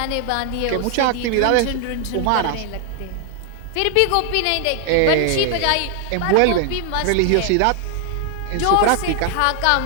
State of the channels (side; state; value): both; different; correlation 0.00